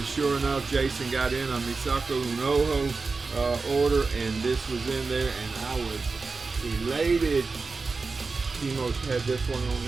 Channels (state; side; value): quieter; left; 4.2 dB